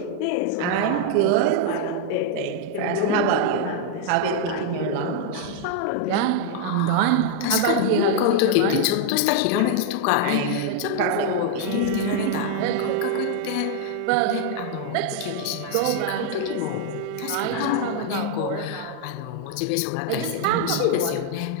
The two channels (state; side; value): different; both; correlation 0.00